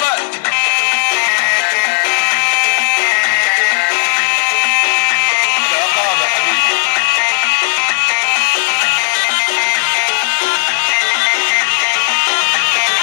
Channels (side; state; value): right; silent; digital silence